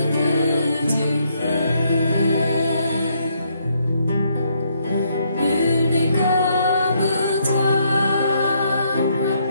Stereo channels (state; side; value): inverted; both; correlation -0.72